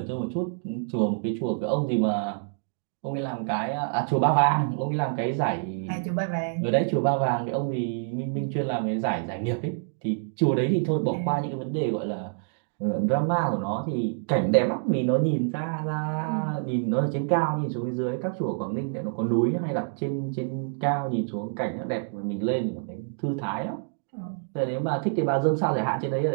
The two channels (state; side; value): silent; left; digital silence